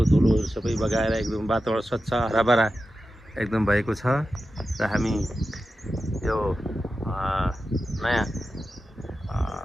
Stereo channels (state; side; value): normal; both; correlation 0.92